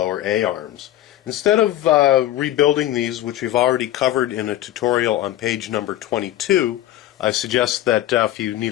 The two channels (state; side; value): quieter; right; 13.5 dB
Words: A-arms. Instead of rebuilding these, which we've already covered in a tutorial on page number 22, I suggest that if you need